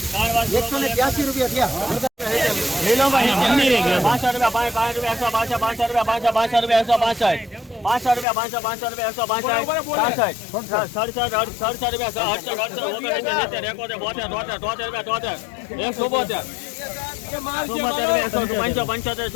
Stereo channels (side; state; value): right; drops out; at 8.2 s